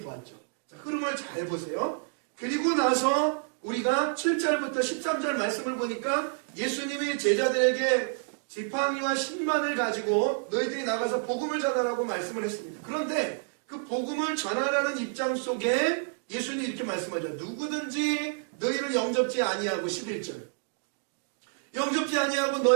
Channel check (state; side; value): silent; left; digital silence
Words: 자, 흐름을 잘 보세요. 그리고 나서 우리가 7절부터 13절 말씀을 보니까 예수님이 제자들에게 지팡이와 신만을 가지고 너희들이 나가서 복음을 전하라고 말씀을 했습니다. 그런데 그 복음을 전하라는 입장 속에 예수님이 이렇게 말씀하죠. 누구든지 너희를 영접지 아니하고 11절 영접지 아니하고